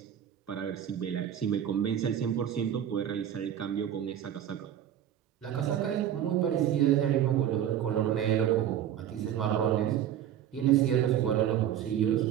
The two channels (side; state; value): left; quieter; 10.3 dB